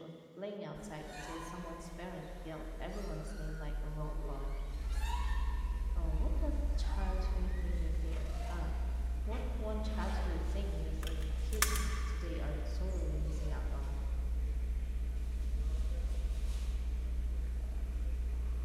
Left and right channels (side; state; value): both; identical; correlation 1.00